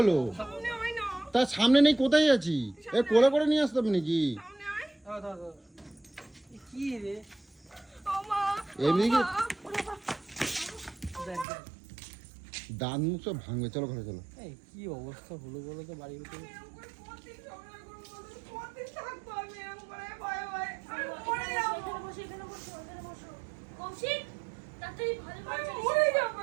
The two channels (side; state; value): left; drops out; at 11.5 s